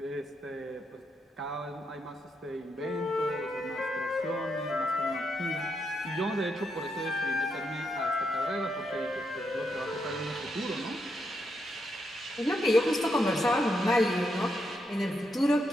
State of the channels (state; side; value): normal; both; correlation 0.81